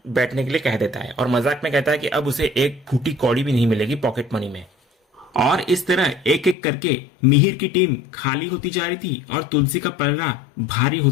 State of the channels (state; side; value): drops out; right; at 6.6 s